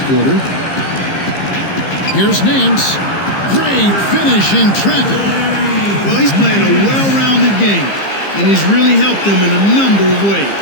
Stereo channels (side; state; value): right; late; 15 ms